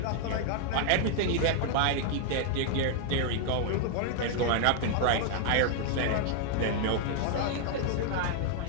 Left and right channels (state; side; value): different; both; correlation 0.00